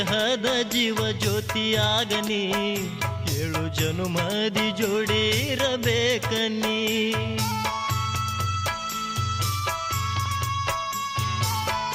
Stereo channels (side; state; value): both; identical; correlation 1.00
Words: ಜೀವ ಜ್ಯೋತಿಯಾಗನಿ, 7 ಜನುಮದಿ ಜೋಡಿರಬೇಕನಿ.